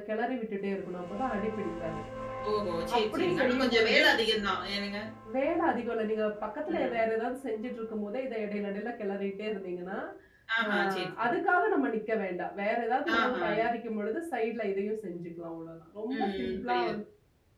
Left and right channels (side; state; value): both; identical; correlation 1.00